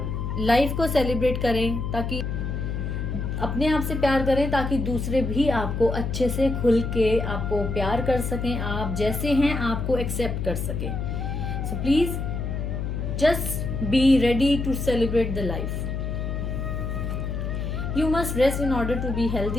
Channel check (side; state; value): left; noise; hum, 3 dB below the sound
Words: लाइफ को सेलिब्रेट करें, ताकि अपने आप से प्यार करें ताकि दूसरे भी आपको अच्छे से खुल के आपको प्यार कर सकें, आप जैसे हैं आपको एक्सेप्ट कर सकें। So please just be ready to celebrate the life. You must rest in order to be